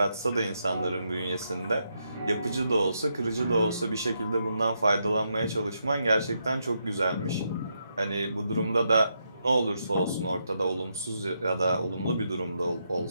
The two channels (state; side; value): inverted; both; correlation -0.81